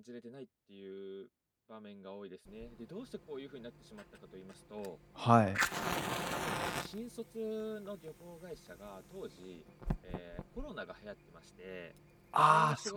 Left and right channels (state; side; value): identical; both; correlation 1.00